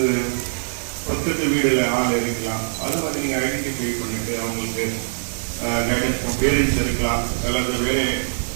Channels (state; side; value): silent; left; digital silence